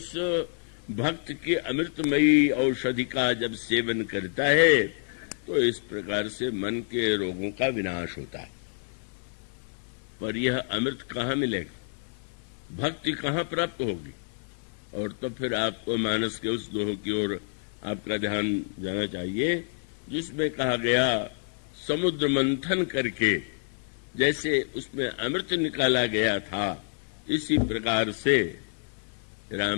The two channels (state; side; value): silent; right; 56 dB below the other